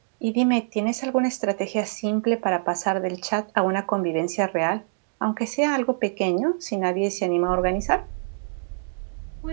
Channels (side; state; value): left; silent; digital silence